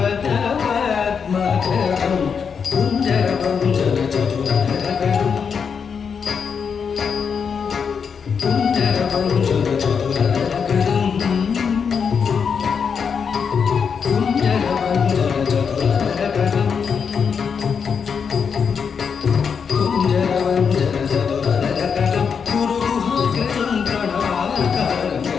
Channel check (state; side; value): quieter; right; 6.4 dB